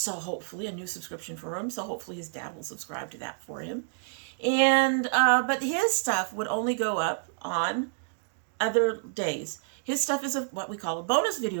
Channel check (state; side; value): silent; left; digital silence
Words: hopefully a new subscription for him. So hopefully his dad will subscribe to that for him. And, but his stuff would only go up on other days. His stuff is what we call a bonus